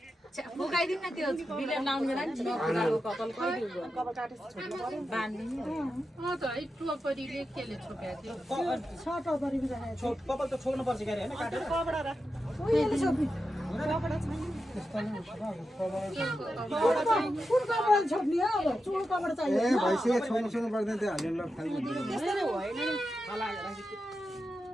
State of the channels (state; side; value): normal; both; correlation 0.89